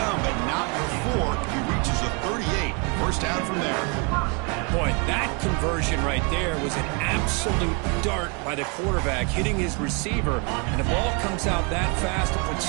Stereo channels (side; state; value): left; quieter; 33.2 dB